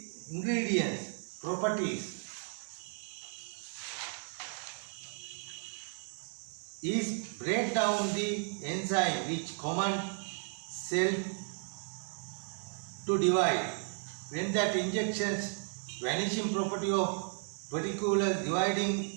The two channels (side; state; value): left; silent; 55 dB below the other